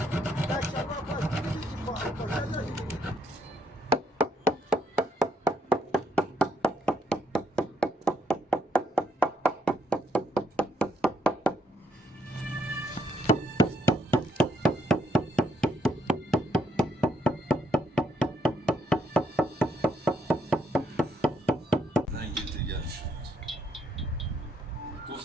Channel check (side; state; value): both; normal; correlation 0.74